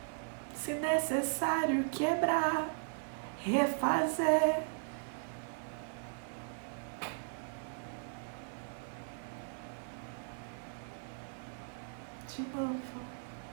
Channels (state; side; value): silent; left; 53 dB below the other